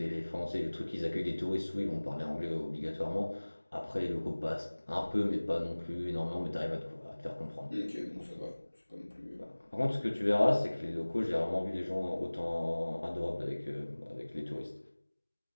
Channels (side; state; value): both; inverted; correlation -1.00